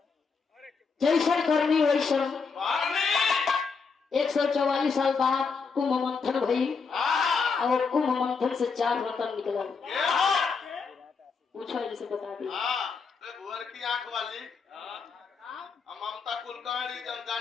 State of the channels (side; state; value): right; quieter; 5.1 dB